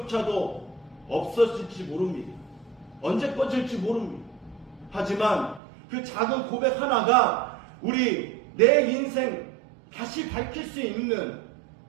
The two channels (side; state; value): left; drops out; at 5.6 s